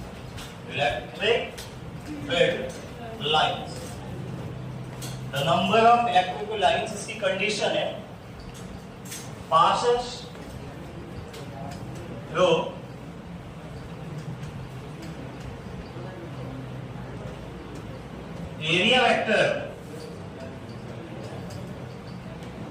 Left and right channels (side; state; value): both; identical; correlation 1.00